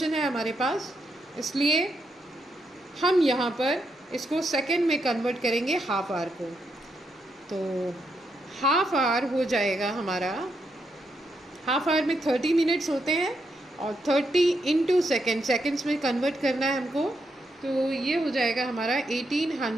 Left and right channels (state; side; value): normal; both; correlation 0.81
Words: है हमारे पास, इसलिए हम यहाँ पर इसको सेकंड में कन्वर्ट करेंगे हाफ आवर को। तो हाफ आवर हो जाएगा हमारा, हाफ आवर में 30 मिनट्स होते हैं और 30 इंटू सेकेंड्स में कन्वर्ट करना है हमको। तो ये हो जाएगा हमारा